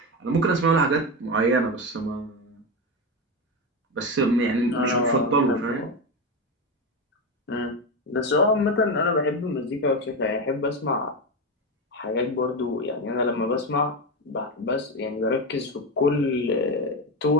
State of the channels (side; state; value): both; normal; correlation 0.15